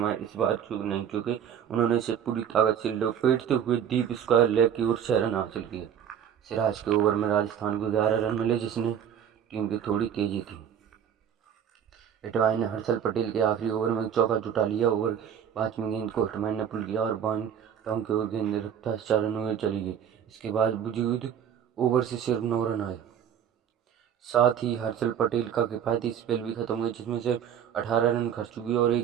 बार चूक नहीं चुके। उन्होंने इसे पूरी ताकत से लपेटते हुए डीप स्क्वायर लेग की ओर 6 रन हासिल किए। सिराज के ओवर में राजस्थान को 11 रन मिले, जिसने टीम की थोड़ी तेजी थी। हिटमायर ने हर्षल पटेल के आखिरी ओवर में चौका जुटा लिया। ओवर 5वीं गेंद को हिटमायर ने पुल किया और बाउंड टॉन्ग की ओर गेंद रफ्तार 4 रनों में चली गई। इसके बाद वजूद ओवर से सिर्फ 9 रन आए। साथ ही हर्षल पटेल का किफायती स्पेल भी खत्म हुआ, जिसमें सिर्फ 18 रन खर्च हुए और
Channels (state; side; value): quieter; left; 8.9 dB